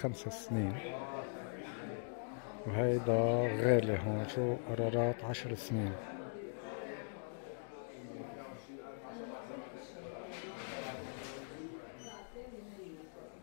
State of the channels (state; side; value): silent; right; digital silence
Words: سنين وهيدا غالي. هون شو قرارات 10 سنين.